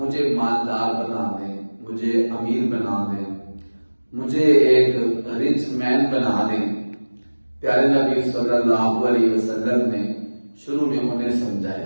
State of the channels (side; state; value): both; inverted; correlation -1.00